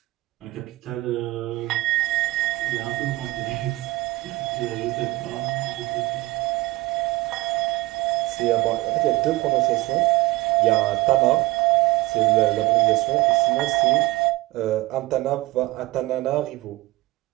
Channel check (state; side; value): quieter; left; 19.8 dB